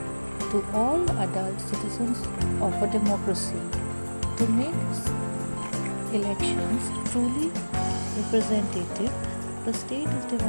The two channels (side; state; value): both; inverted; correlation -1.00